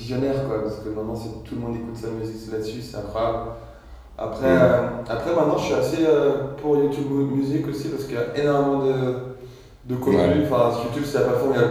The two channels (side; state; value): both; identical; correlation 1.00